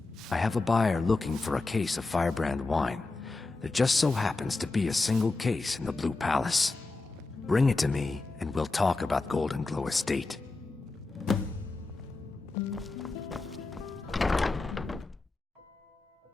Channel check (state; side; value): quieter; right; 3.5 dB